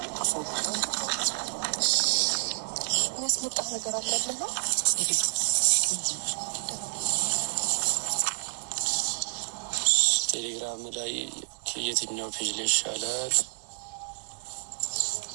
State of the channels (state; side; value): silent; left; digital silence